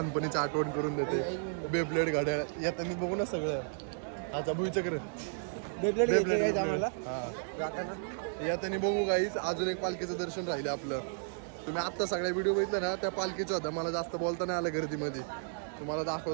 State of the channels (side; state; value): left; silent; digital silence